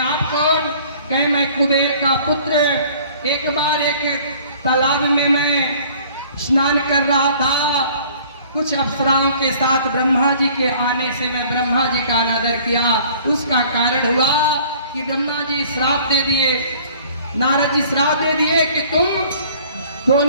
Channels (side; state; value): both; inverted; correlation -0.53